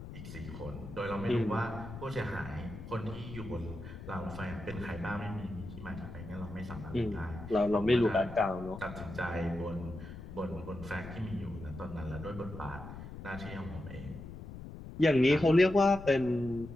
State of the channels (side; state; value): left; noise; rumble, 12 dB below the sound